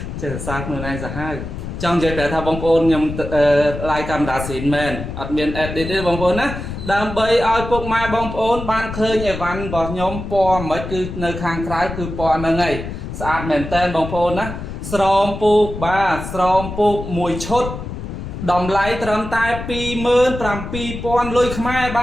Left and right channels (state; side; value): noise; left; rumble, 8 dB below the sound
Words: chết thật xa không luôn anh giả hai trong giấy bé thà bông ôn nhầm like camera xin men admin edit bông ôn á đam bay ai phục mai bông ôn ban khơi nhẹ văn vào nhóm po mới cứ nơi khang trái cứ po nơi ngày sạch mền tên bông ôn á srom pu ba srom pu mùi chốt đầm lấy trầm tai pi mơn trầm pi pon lôi khai